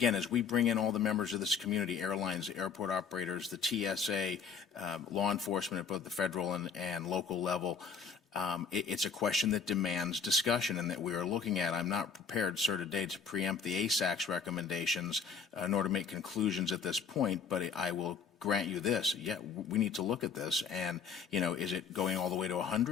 as we bring in all the members of this community, airlines, airport operators, the TSA, law enforcement at both the federal and local level, it's a question that demands discussion and that we are looking at. I'm not prepared, sir, today to preempt the ASAC's recommendations nor to make conclusions at this point, but I will grant you this. Yeah, we need to look at this. And, you know, is it going all the way to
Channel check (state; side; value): quieter; right; 6.0 dB